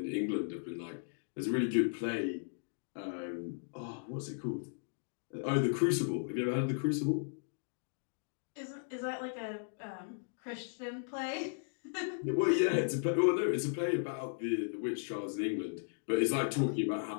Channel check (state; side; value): silent; right; digital silence